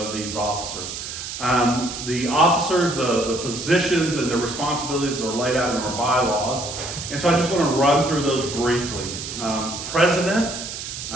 these officers. The officers, the positions, and the responsibilities are laid out in our bylaws. And so I just want to run through those briefly. President,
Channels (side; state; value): right; noise; hiss, 8 dB below the sound